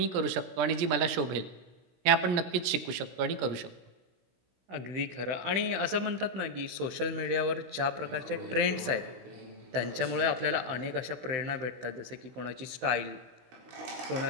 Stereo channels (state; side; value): late; left; 16 ms